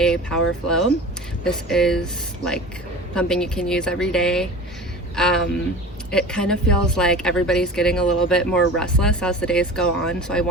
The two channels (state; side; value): normal; both; correlation 0.37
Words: a power flow. This is like something you can use every day. It kind of feels like everybody's getting a little bit more restless as the days go on, so I